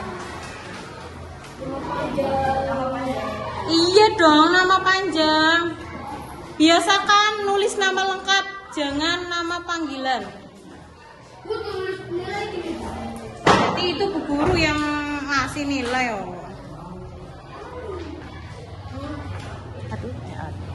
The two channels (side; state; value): both; identical; correlation 1.00